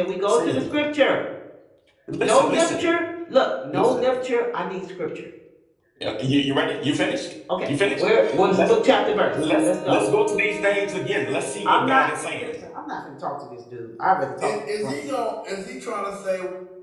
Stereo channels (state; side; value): identical; both; correlation 1.00